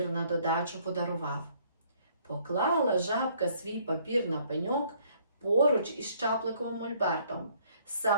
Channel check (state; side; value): inverted; both; correlation -0.64